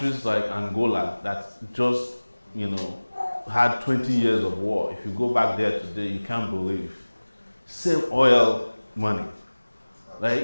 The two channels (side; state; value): both; inverted; correlation -1.00